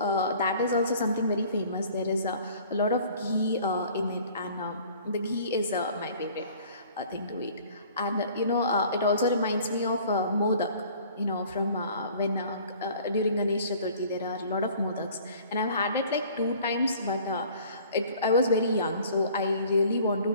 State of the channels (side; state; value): both; inverted; correlation -0.51